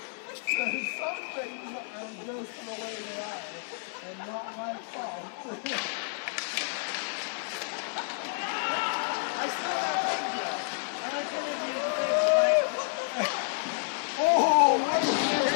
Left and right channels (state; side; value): silent; right; 58 dB below the other